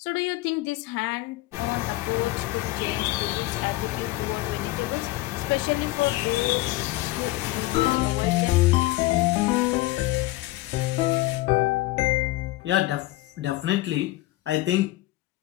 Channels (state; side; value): quieter; right; 18.4 dB